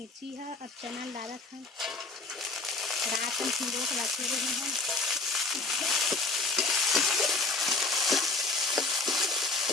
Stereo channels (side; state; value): right; quieter; 3.4 dB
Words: है। अब चैनल डाला था रात में सिंदूर को रखे रहे हैं।